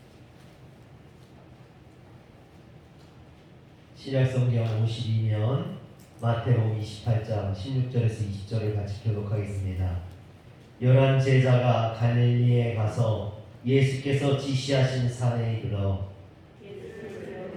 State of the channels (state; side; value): identical; both; correlation 1.00